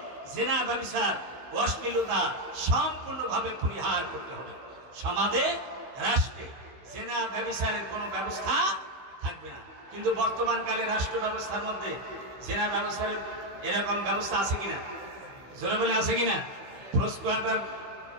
জিনা, ব্যভিচার, অশ্লীলতা সম্পূর্ণভাবে পরিহার করতে হবে। সমাজে, রাষ্ট্রে জিনা ব্যভিচারের কোনো ব্যবস্থা থাকবে না। কিন্তু বর্তমান কালে রাষ্ট্র ব্যবস্থার মধ্যে জিনা ব্যভিচারের এরকম ব্যবস্থা আছে কিনা? জোরে বলে আছে কিনা? প্রস্কোয়াটার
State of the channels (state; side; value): late; left; 16 ms